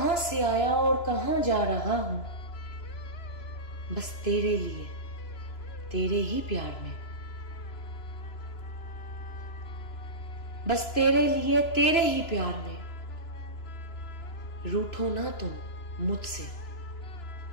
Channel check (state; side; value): late; right; 2.9 ms